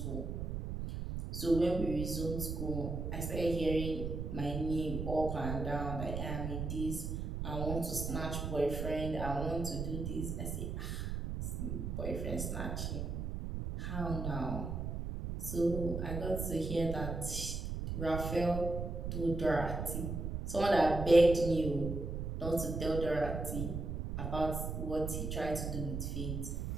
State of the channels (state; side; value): noise; right; rumble, 3 dB below the sound